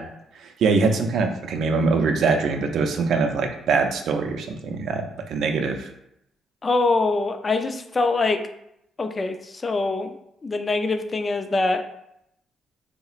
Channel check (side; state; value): both; normal; correlation 0.73